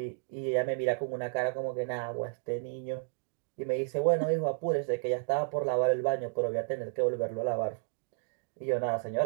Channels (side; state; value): left; silent; digital silence